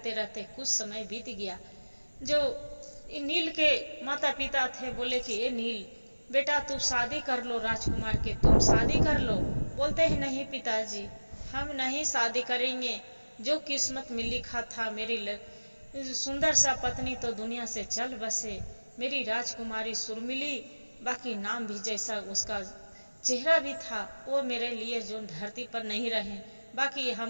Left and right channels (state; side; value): inverted; both; correlation -1.00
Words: रहते कुछ समय बीत गया। जो नील के माता पिता थे बोले कि ये नील बेटा, तू शादी कर लो राजकुमार के, तुम शादी कर लो। बोलते हैं नहीं पिताजी, हम नहीं शादी करेंगे, जो किस्मत में लिखा था, मेरी सुंदर सा पत्नी तो दुनिया से चल बसे, मेरी राजकुमारी सुरमिली, बाकी नाम भी जैसा उसका चेहरा भी था, वो मेरे लिए जो धरती पर नहीं रहे। बाकी